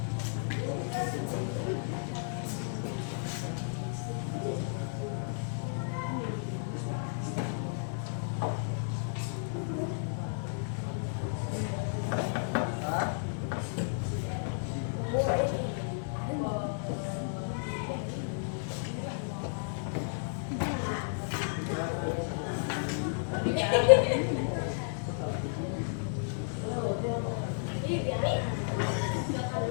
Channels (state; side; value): silent; right; 56 dB below the other